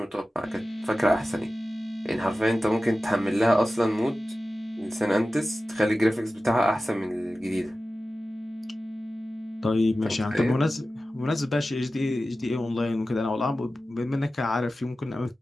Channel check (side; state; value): both; normal; correlation 0.95